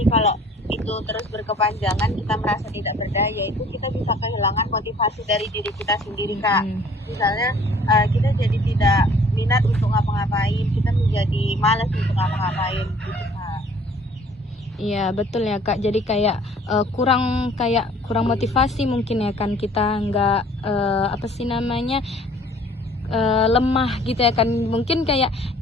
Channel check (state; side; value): normal; both; correlation 0.54